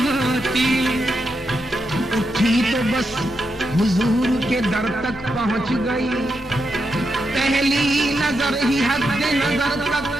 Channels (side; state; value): both; normal; correlation 0.84